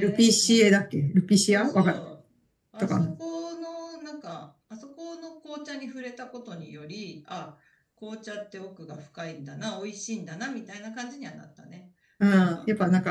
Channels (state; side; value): identical; both; correlation 1.00